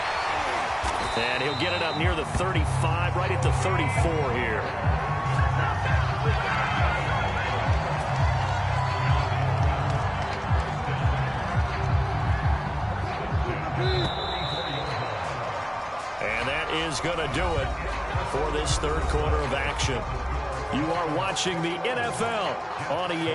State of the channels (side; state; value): both; identical; correlation 1.00